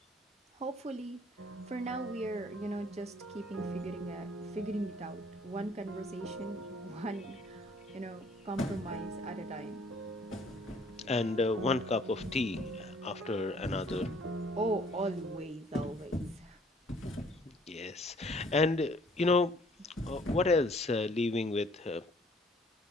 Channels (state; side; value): normal; both; correlation 0.59